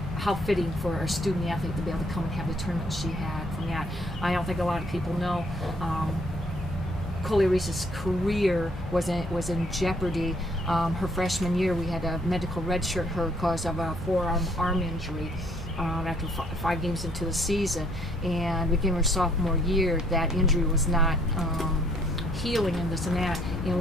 how fitting for a student athlete to be able to come and have the tournament she had from that. I don't think a lot of people know. Coley Reese's career was in jeopardy. Her freshman year, we had a medical redshirt her because of a forearm arm injury after 5 games into the season. And beginning her sophomore year, that injury was not healing and this and that. And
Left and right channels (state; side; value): normal; both; correlation 0.64